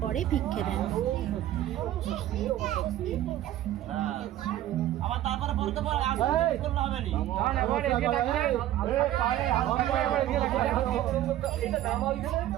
ভিক্ষে দেন। আবার তারপরে পড়তে পর আসলে করলে হবে নি। এটা নামা হইছে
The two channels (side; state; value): left; quieter; 13.2 dB